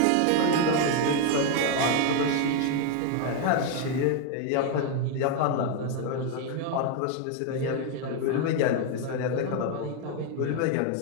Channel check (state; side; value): different; both; correlation 0.01